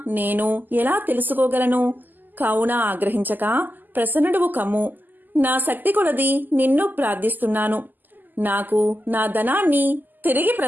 నేను ఎలా తెలుసుకోగలను? కావున ఆగ్రహించక ప్రసన్నుడువు కమ్ము. నా శక్తి కొలది నిన్ను ప్రార్థిస్తున్నాను. నాకు నా ధనాన్ని తిరిగి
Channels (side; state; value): left; late; 0.087 ms